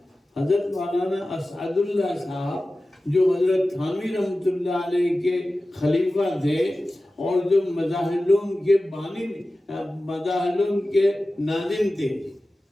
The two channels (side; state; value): both; normal; correlation 0.96